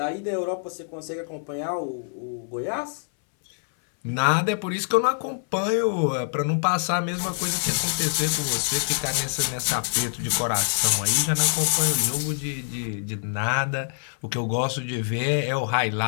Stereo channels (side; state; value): right; silent; 62 dB below the other